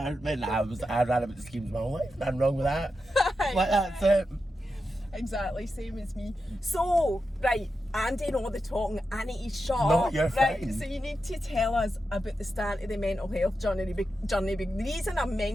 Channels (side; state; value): both; normal; correlation 0.89